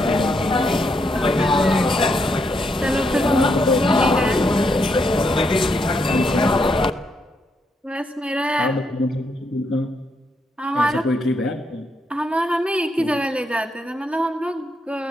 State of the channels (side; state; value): both; normal; correlation 0.78